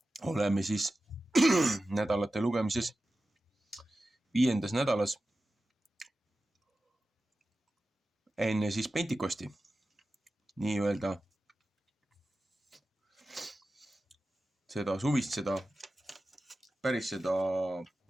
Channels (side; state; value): both; normal; correlation 0.94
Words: Oleme siis nädalate lugemises 5. nädalas enne siis Pentikosti, nii-öelda seda suvist, seda päris seda